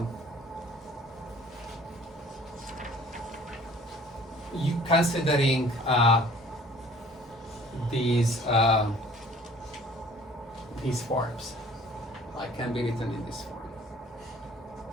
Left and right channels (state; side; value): normal; both; correlation 0.52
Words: considering these forms, like can be written in this form.